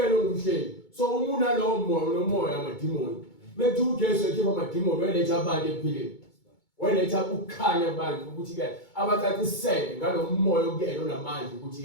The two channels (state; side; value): late; right; 2.2 ms